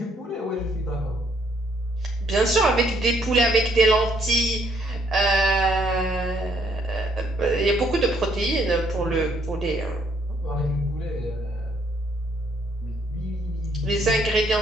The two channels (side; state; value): both; normal; correlation 0.68